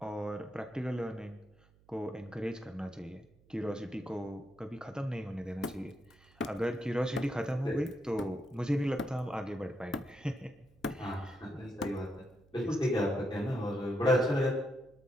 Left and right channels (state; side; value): noise; right; hum, 29 dB below the sound